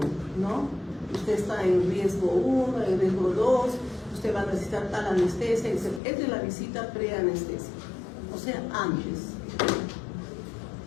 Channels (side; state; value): right; drops out; at 6.0 s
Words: ¿no? Usted está en riesgo 1, en riesgo 2, usted va a necesitar tal anestesia, etc. Es de la visita preanestesia, o sea, antes.